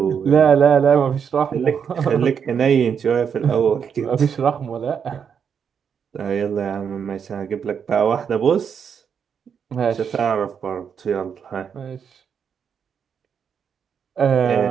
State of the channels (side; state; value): left; quieter; 7.2 dB